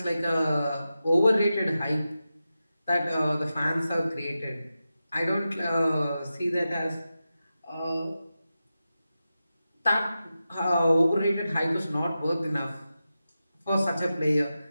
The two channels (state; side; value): inverted; both; correlation -0.92